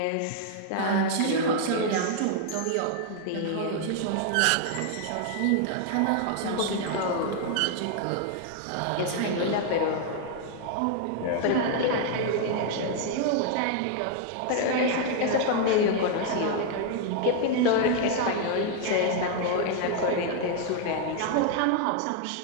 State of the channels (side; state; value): both; different; correlation 0.00